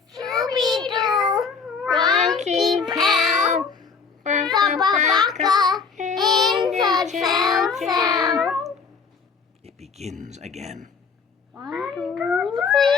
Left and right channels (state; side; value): quieter; right; 5.3 dB